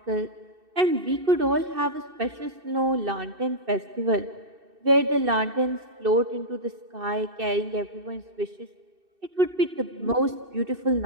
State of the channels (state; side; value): late; left; 2.6 ms